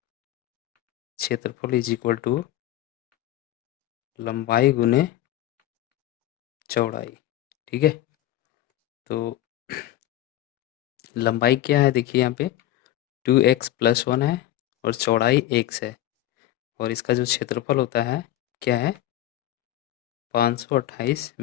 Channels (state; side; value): quieter; right; 13.7 dB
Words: क्षेत्रफल इज इक्वल टू लंबाई गुने चौड़ाई। ठीक है, तो लंबाई क्या है देखिए यहाँ पे 2x + 1 है और चौड़ाई x है, और इसका जो क्षेत्रफल होता है क्या है 528